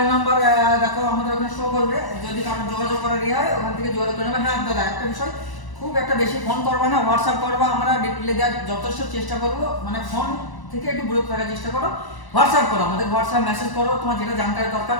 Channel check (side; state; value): right; late; 1.0 ms